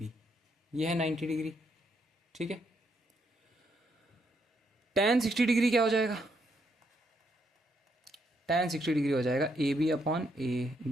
ये है 90 डिग्री। ठीक है, tan 60 डिग्री क्या हो जाएगा? tan 60 डिग्री हो जाएगा A B upon A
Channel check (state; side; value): normal; both; correlation 0.76